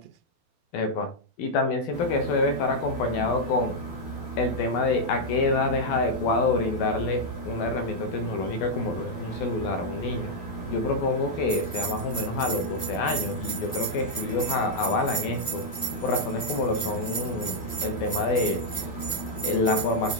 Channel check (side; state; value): right; late; 12 ms